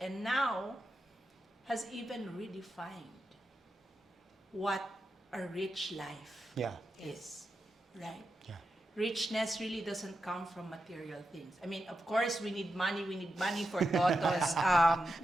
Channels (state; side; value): normal; both; correlation 0.89